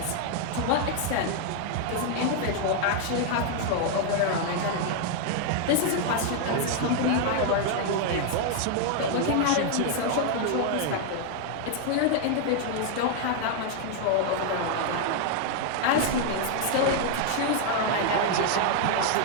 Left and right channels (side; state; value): both; different; correlation 0.00